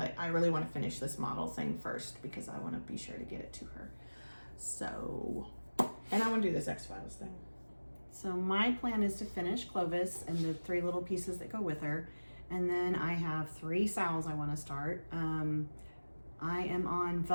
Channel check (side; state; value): both; inverted; correlation -1.00